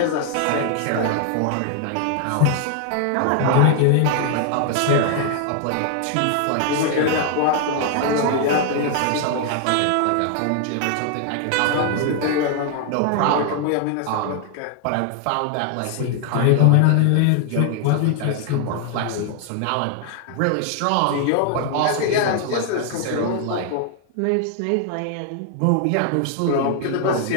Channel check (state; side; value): different; both; correlation 0.00